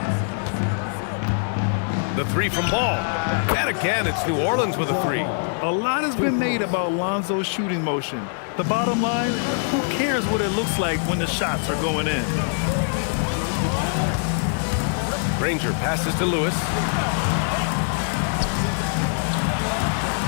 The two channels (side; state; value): right; silent; 63 dB below the other